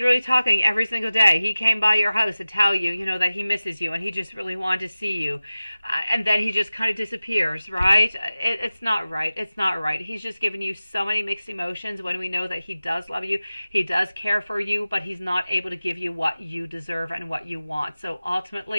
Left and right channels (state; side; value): inverted; both; correlation -0.96